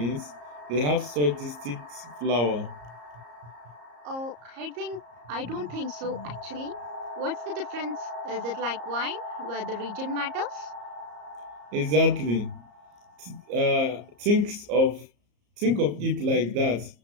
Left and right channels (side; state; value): left; late; 34 ms